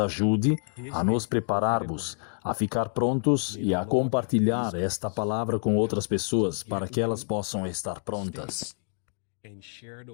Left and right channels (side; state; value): right; silent; digital silence